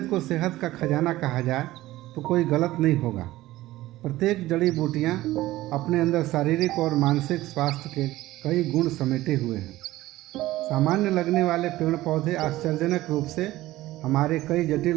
को सेहत का खजाना कहा जाए तो कोई गलत नहीं होगा। प्रत्येक जड़ी बूटियाँ अपने अंदर शारीरिक और मानसिक स्वास्थ्य के कई गुण समेटे हुए हैं। सामान्य लगने वाले पेड़ पौधे आश्चर्यजनक रूप से हमारे कई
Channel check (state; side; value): quieter; left; 16.6 dB